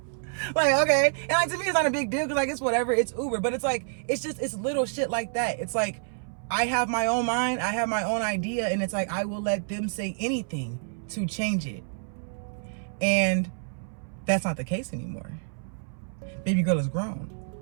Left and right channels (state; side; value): silent; left; 59 dB below the other